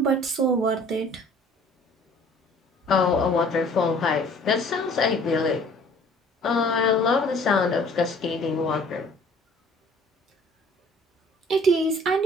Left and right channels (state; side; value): normal; both; correlation 0.53